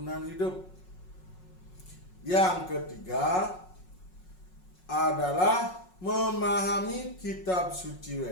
hidup. Yang ketiga adalah memahami kitab suci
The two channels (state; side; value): late; right; 5.5 ms